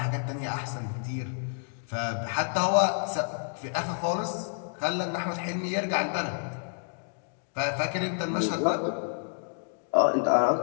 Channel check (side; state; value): right; silent; digital silence